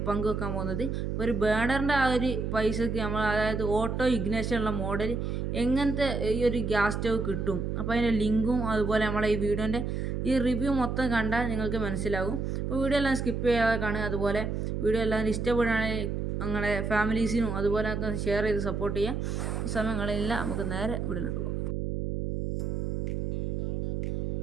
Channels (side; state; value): right; noise; hum, 2 dB below the sound